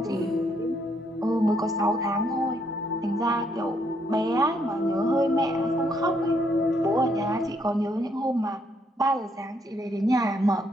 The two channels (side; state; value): both; normal; correlation 0.72